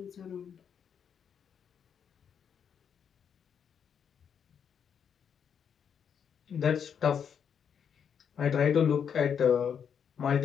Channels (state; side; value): quieter; right; 7.6 dB